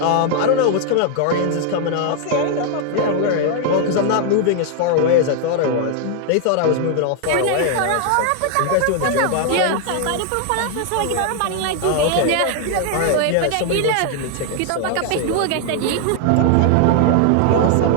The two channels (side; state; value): both; different; correlation 0.00